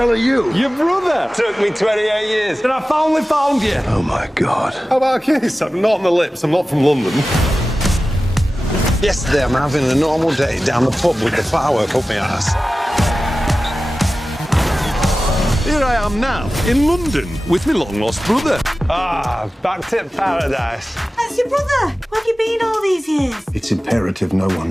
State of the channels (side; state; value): both; normal; correlation 0.95